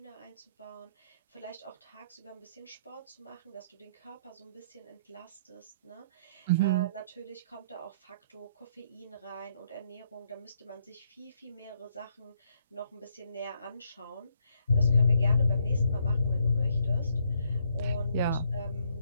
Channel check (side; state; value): both; inverted; correlation -0.70